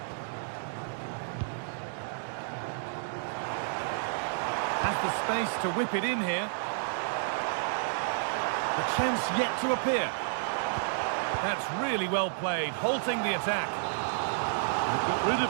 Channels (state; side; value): silent; left; digital silence